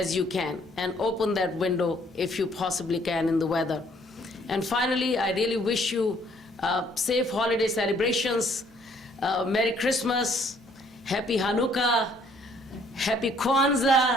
you can, and open that window if you possibly can in the weather. And finally, I really wish you safe holiday celebrations, Merry Christmas, Happy Hanukkah, Happy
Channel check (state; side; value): normal; both; correlation 0.63